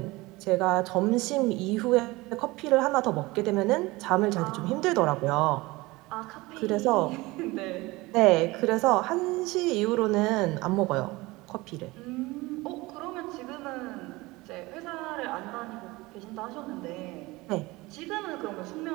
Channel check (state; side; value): quieter; left; 21.5 dB